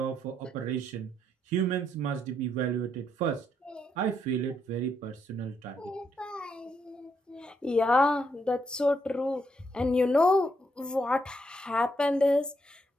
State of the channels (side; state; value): both; normal; correlation 0.77